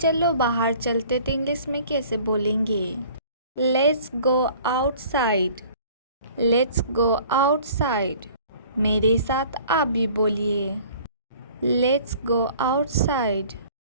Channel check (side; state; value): both; inverted; correlation -0.50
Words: बाहर चलते तो इंग्लिश में कैसे बोलेंगे? Let's go outside. Let's go outside. मेरे साथ आप भी बोलिए। Let's go outside.